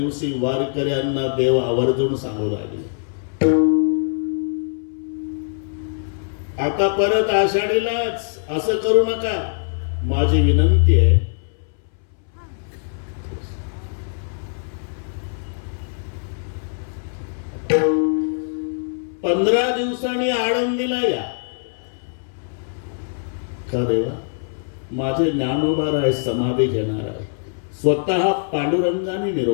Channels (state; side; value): silent; right; 62 dB below the other